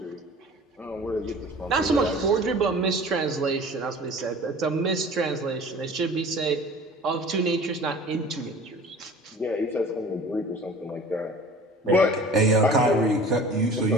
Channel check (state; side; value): normal; both; correlation 0.43